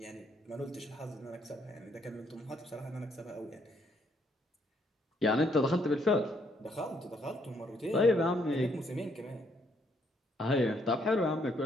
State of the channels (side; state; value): both; normal; correlation 0.71